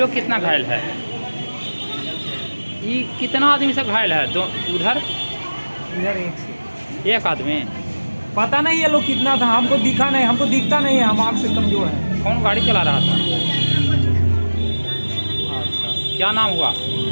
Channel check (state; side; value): inverted; both; correlation -1.00